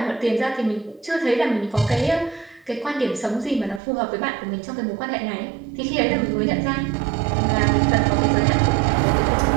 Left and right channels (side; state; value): left; drops out; at 3.8 s